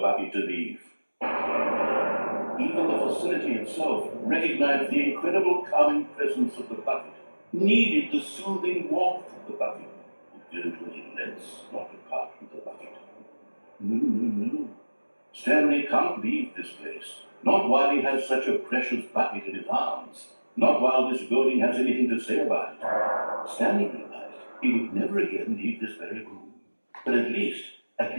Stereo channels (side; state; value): both; inverted; correlation -1.00